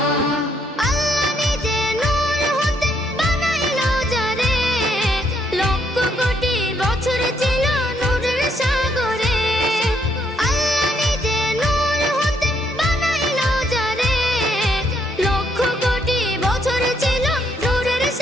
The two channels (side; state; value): both; normal; correlation 0.72